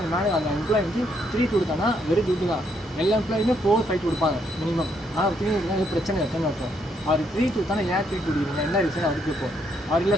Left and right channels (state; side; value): normal; both; correlation 0.73